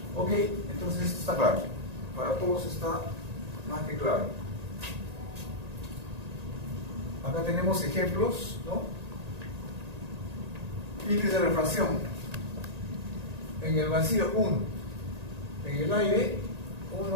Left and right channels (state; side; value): late; left; 1.9 ms